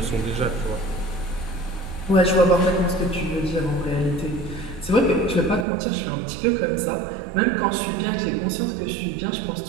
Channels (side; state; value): left; drops out; at 5.7 s